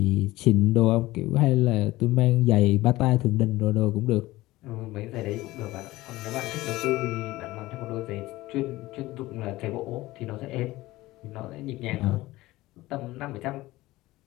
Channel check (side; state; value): right; quieter; 18.2 dB